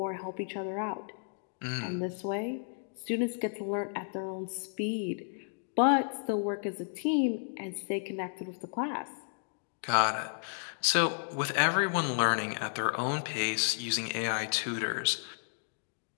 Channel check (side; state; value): right; silent; digital silence